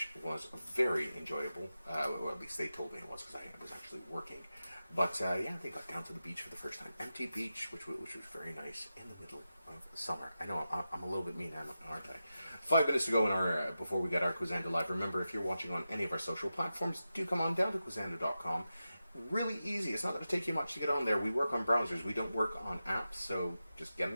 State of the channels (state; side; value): inverted; both; correlation -0.92